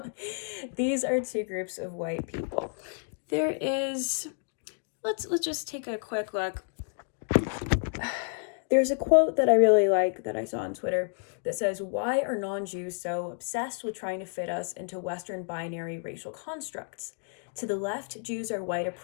these are two groups of white people. There is, let's just take a quick look. There's a quote that I really like that I saw on Twitter that says, why are non-Jews so obsessed with trying to fit us into Western binary racial constructs? To the left, Jews are white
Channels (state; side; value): silent; right; 58 dB below the other